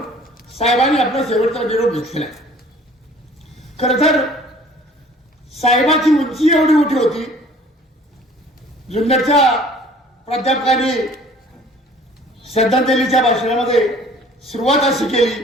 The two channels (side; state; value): both; normal; correlation 0.51